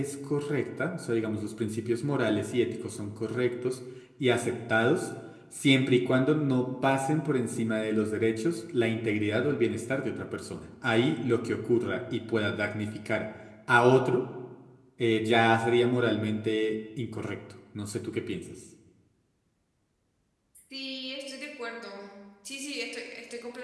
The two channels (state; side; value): identical; both; correlation 1.00